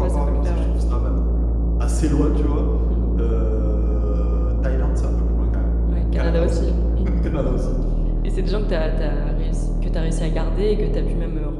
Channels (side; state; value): both; identical; correlation 1.00